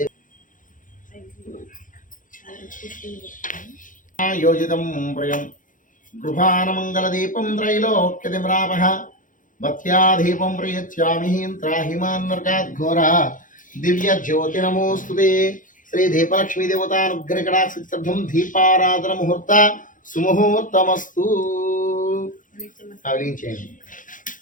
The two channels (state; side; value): late; right; 0.38 ms